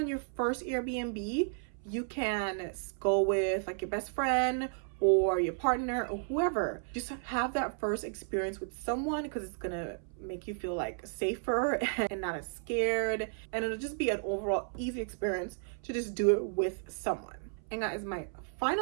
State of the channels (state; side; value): silent; left; 56 dB below the other